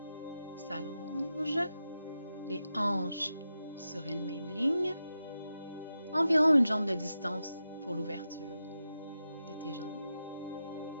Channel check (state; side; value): inverted; both; correlation -0.90